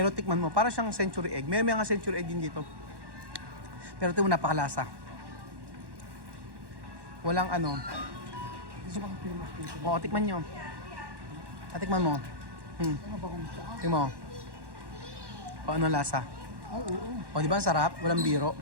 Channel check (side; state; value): left; late; 1.1 ms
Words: tikman mo, para siyang century egg. May mga century egg din dito. Pero ito mo napakalasa. Walang ano. Gusto ko famous dito. O, tikman nyo. Tikman mo. Ano ba kung saan? Tikman mo. O, ano lasa? Oo. O, di ba ang sarap? Walang biro.